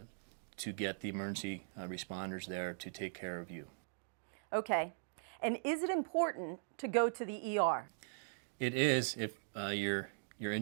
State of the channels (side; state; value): left; silent; digital silence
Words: to get the emergency responders there to take care of you. Okay. And is it important to go to the ER? It is if your